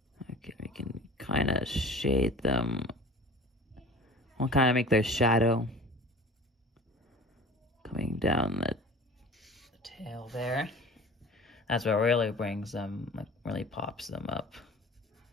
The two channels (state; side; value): normal; both; correlation 0.41